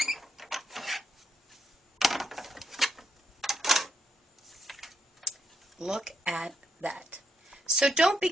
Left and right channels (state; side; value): normal; both; correlation 0.79